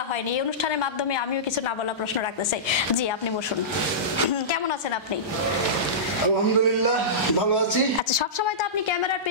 হয়নি, এই অনুষ্ঠানের মাধ্যমে আমিও কিছু না বলা প্রশ্ন রাখতে চাই। জি, আপনি বসুন। কেমন আছেন আপনি? আলহামদুলিল্লাহ ভালো আছি। আচ্ছা, সবসময় তো আপনি ক্যামেরার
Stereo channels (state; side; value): normal; both; correlation -0.18